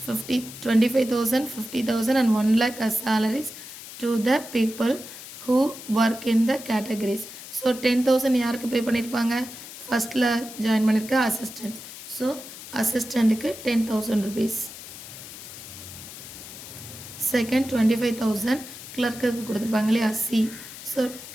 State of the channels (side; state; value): left; noise; hiss, 13 dB below the sound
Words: 50 25,000 50,000 and 1 lakh as salaries to the people who work in the categories. So 10,000 யாருக்கு பே பண்ணியிருப்பாங்க, ஃபஸ்ட்டில் ஜாயின் பண்ணியிருக்க அசிஸ்டன்ட். ஸோ அசிஸ்டண்ட்டுக்கு 10,000 rupees. செகண்ட் 25,000 கிளர்க்குக்கு கொடுத்துருப்பாங்க இல்லையா சி. ஸோ